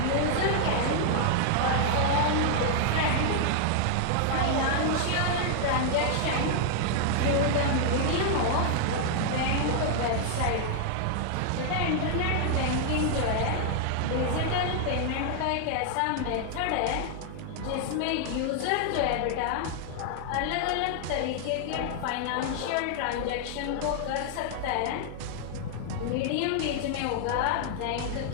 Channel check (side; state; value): both; different; correlation 0.00